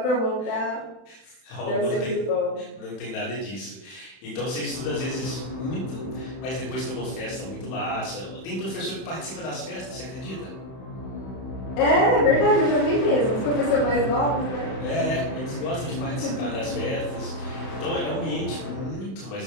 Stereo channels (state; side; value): late; right; 31 ms